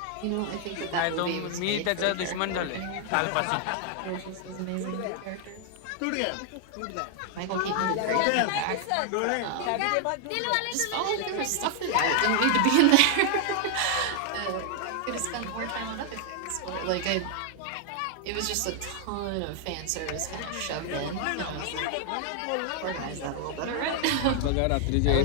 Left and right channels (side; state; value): both; different; correlation 0.00